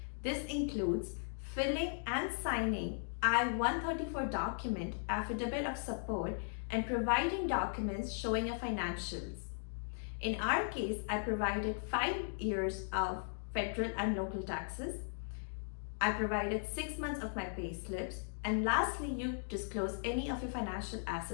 This includes filling and signing I-134 document, affidavit of support, and providing documents showing your financials. In our case, I provided 5 years of federal and local taxes. I provided 6 months of my pay slips, and lastly, you disclose any of your financial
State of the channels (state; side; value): silent; right; digital silence